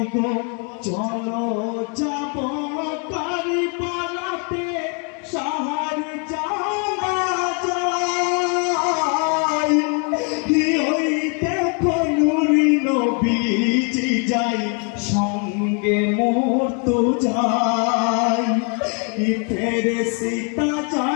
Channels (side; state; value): right; quieter; 38.0 dB